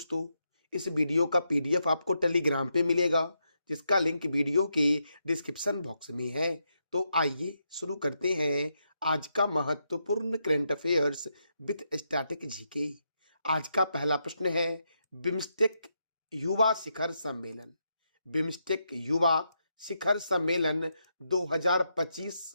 इस वीडियो का पीडीएफ आपको टेलीग्राम पे मिलेगा जिसका लिंक वीडियो के डिस्क्रिप्शन बॉक्स में है। तो आइए शुरू करते हैं आज का महत्वपूर्ण current affairs with static GK. आज का पहला प्रश्न है, बिम्स्टेक युवा शिखर सम्मेलन। बिम्स्टेक युवा शिखर सम्मेलन 2025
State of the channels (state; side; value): inverted; both; correlation -0.82